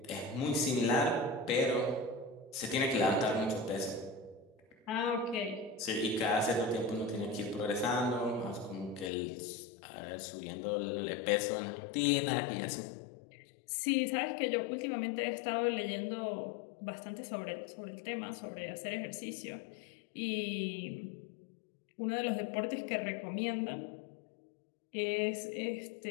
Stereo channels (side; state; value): right; drops out; at 9.1 s